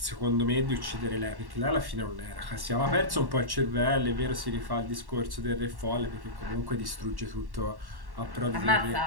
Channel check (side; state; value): left; late; 1.1 ms